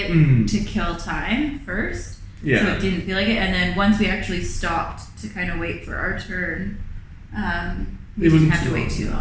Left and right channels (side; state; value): both; identical; correlation 1.00